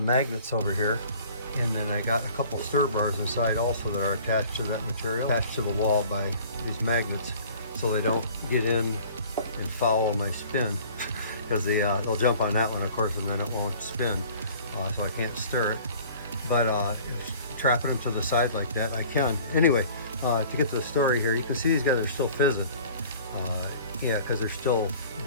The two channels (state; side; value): inverted; both; correlation -0.49